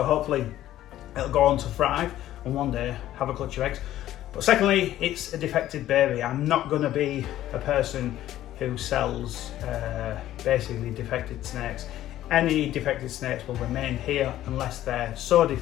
hopefully it'll go on to thrive and one day have a clutch of eggs. But secondly, it's a defected baby. I'm not going to be a person who sells basically defected snakes. Any defected snakes will remain here unless they're so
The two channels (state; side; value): quieter; right; 13.3 dB